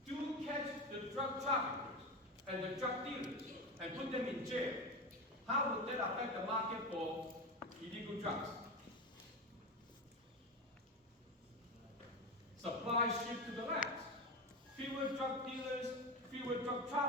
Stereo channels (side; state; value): both; normal; correlation 0.21